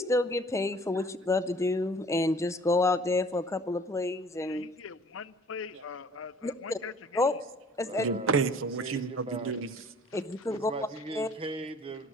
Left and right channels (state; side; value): normal; both; correlation 0.52